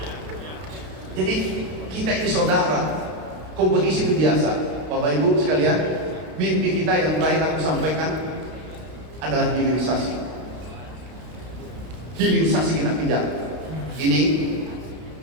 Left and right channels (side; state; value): left; late; 32 ms